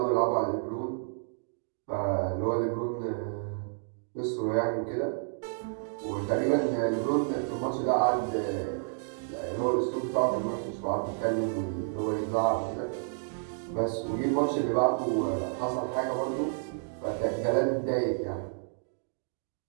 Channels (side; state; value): left; silent; digital silence